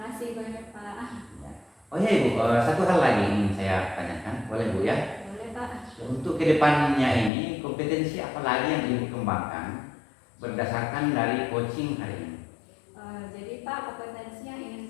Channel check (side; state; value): right; drops out; at 7.3 s